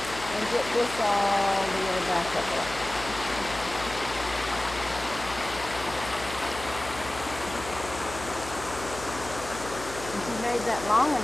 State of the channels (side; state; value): left; noise; hum, 12 dB below the sound